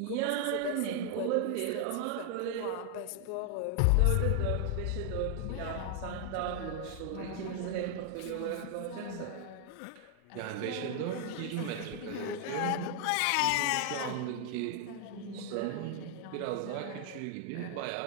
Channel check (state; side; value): different; both; correlation 0.00